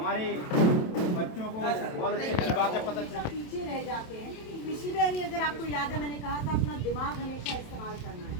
बच्चों को बहुत अच्छी बातें पता चलती। पीछे रह जाते हैं। पिछली बार अगर आपको याद है, मैंने कहा था अपना दिमाग हमेशा इस्तेमाल करना है।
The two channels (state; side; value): late; right; 27 ms